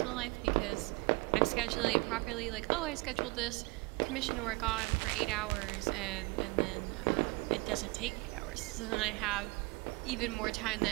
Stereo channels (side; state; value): left; quieter; 25.2 dB